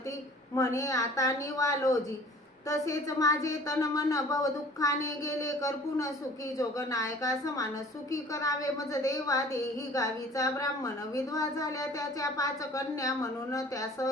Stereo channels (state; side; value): normal; both; correlation 0.48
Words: म्हणे आता निवालोजी, तसेच माझे तन मन भव दुःखाने गेले करपून, सुखी जोगनायका समान, सुखी करावे मज देवा, देही गावीचा ब्राह्मण, विधवा झाल्या त्याच्या 5 कन्या, म्हणून त्यास